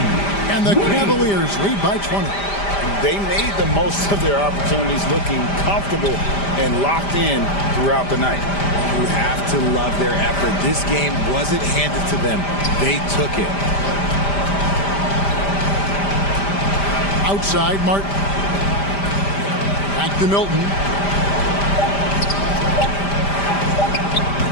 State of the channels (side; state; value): right; late; 5.0 ms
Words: And the Cavaliers lead by 20. They made the most of their opportunities, looking comfortable and locked in throughout the night. You have to love their effort. This game wasn't handed to them. They took it. Outside, Martin. Back to Milton.